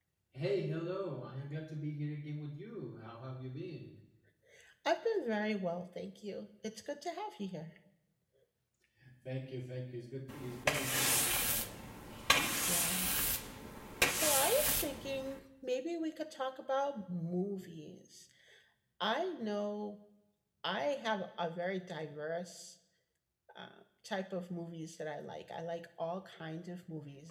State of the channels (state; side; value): identical; both; correlation 1.00